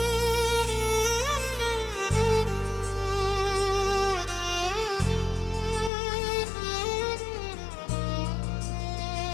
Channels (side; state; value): right; drops out; at 5.9 s